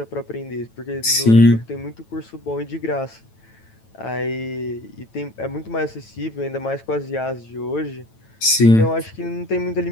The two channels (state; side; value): late; right; 9.1 ms